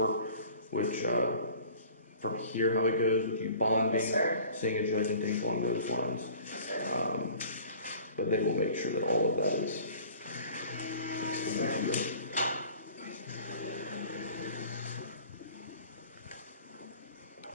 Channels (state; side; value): inverted; both; correlation -0.46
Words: which, from here, how it goes with you bonding, seeing a judge, and things along those lines. But they will make sure that all of that is explained to you.